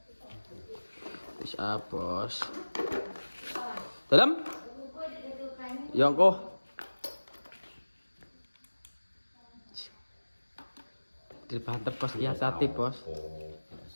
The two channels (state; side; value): inverted; both; correlation -1.00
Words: Bisa, Bos. Dalam? Yongko. Dibanter, Bos. Iya, hati, Bos.